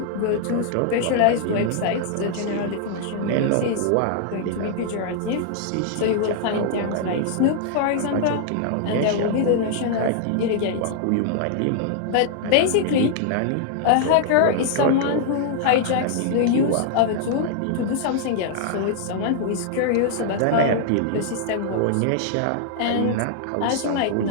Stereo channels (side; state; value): both; different; correlation -0.01